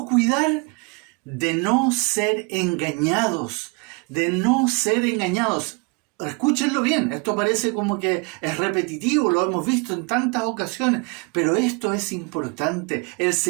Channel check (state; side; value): quieter; left; 30.1 dB